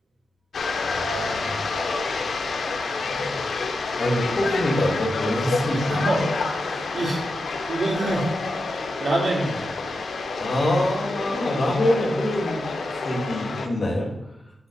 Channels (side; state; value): both; normal; correlation 0.88